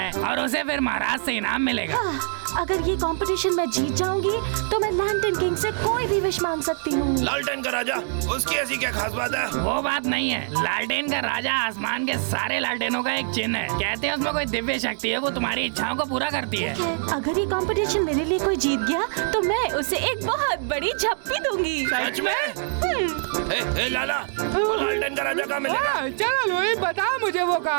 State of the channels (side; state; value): left; silent; 62 dB below the other